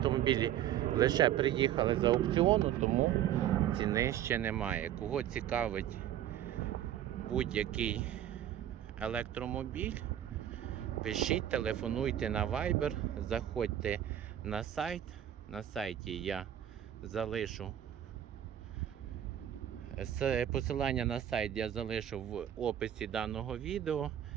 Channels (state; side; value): quieter; left; 11.1 dB